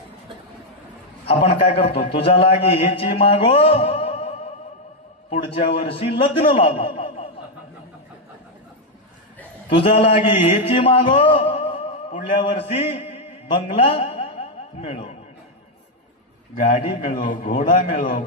आपण काय करतो, तुझा लागे हेची मागो पुढच्या वर्षी लग्न लागो, तुझा लागे हेची मागो पुढल्या वर्षी बंगला मिळो, गाडी मिळो, घोडा मिळो,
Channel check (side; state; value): both; normal; correlation 0.01